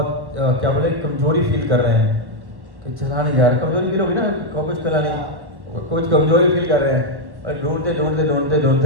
क्या बोले, कमजोरी फील कर रहे हैं कि चला नहीं जा रहा। कमजोरी फील होगी ना, कुछ चला नहीं, कुछ कमजोरी फील कर रहे हैं। और ढूंढते ढूंढते ढूंढते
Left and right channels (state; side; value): late; left; 1.1 ms